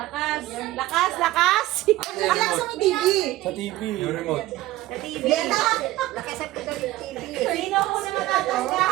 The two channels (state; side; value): quieter; left; 16.5 dB